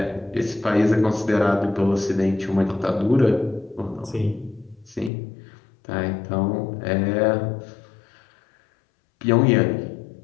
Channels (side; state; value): right; drops out; at 5.1 s